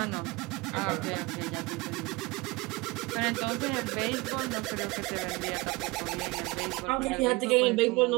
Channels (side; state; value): left; quieter; 24.1 dB